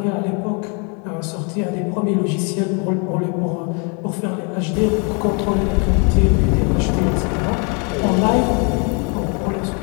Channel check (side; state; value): right; quieter; 34.6 dB